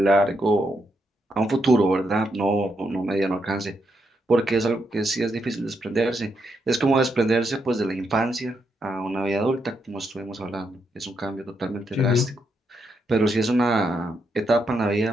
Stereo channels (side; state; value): both; normal; correlation 0.80